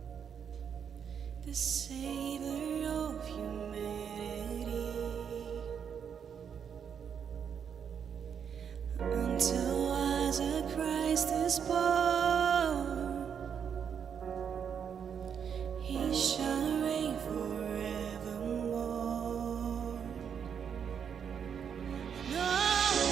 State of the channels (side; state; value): left; quieter; 7.5 dB